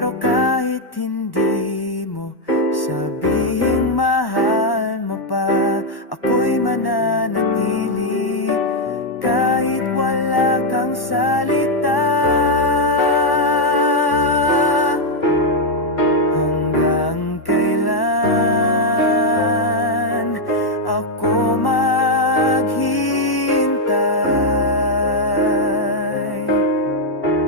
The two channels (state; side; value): late; right; 1.1 ms